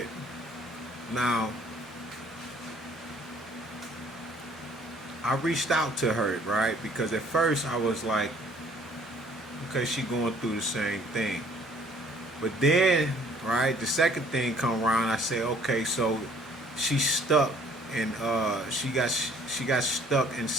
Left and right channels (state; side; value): normal; both; correlation 0.58